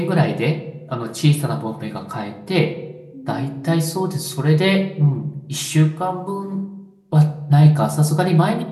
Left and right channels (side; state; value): both; identical; correlation 1.00